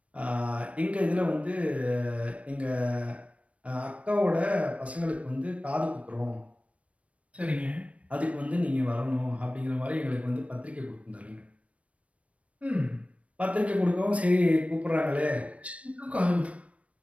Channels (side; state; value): left; late; 0.064 ms